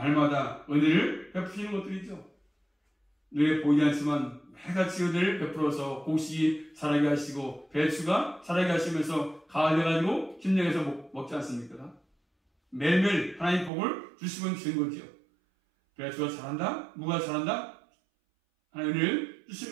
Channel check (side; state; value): left; drops out; at 13.7 s